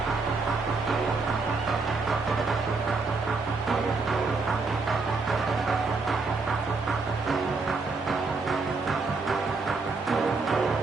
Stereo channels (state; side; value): quieter; left; 4.0 dB